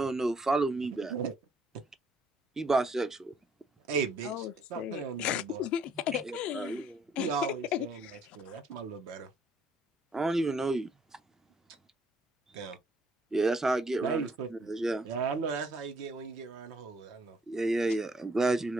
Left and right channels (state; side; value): normal; both; correlation 0.65